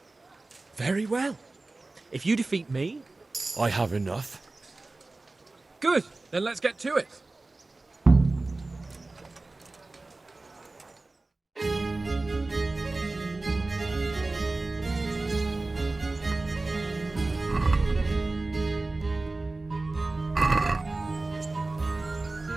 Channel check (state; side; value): quieter; left; 3.2 dB